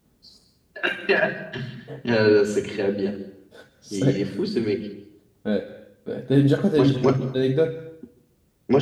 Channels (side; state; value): both; identical; correlation 1.00